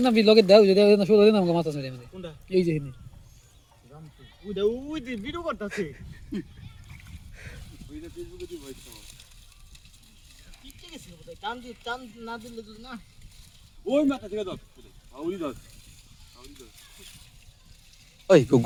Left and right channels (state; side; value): identical; both; correlation 1.00